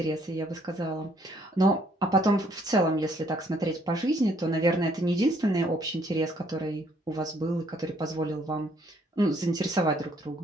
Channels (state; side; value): normal; both; correlation 0.66